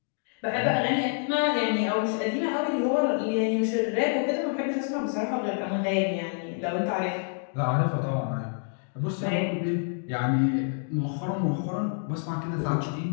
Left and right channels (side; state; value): right; silent; 56 dB below the other